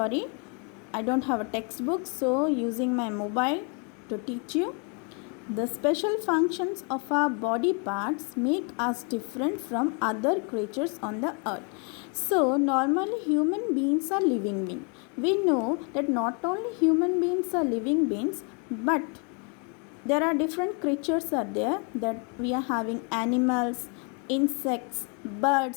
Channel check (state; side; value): quieter; right; 36.5 dB